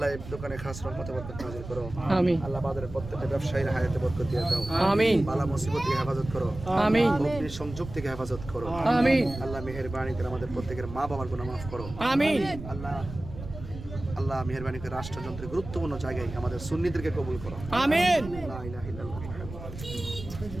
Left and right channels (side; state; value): right; noise; rumble, 12 dB below the sound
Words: এই দোকানে খাস রহমতে বরকত নাযিল করো। আমিন। আল্লাহ বাজারের প্রত্যেকটা ব্যবসায়ীর হায়াতে বরকত দিয়ে দাও। আমিন। বালা মুসিবত থেকে হেফাজত করো। আমিন। অগ্নি সংযোগ থেকে হেফাজত করো। আমিন। আল্লাহ মেহেরবানি করে আমাদের প্রত্যেকের মা বাবার গুনাহ মাফ করো। আমিন। আল্লাহ মেহেরবানি করে রাষ্ট্রযন্ত্রের গুরুত্বপূর্ণ জায়গায় আমাদের সুন্নিদেরকে কবুল করো। আমিন। লা ইলাহা ইল্লাল্লাহ।